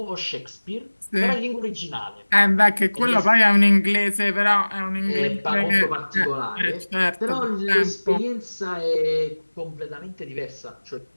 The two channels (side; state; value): both; inverted; correlation -1.00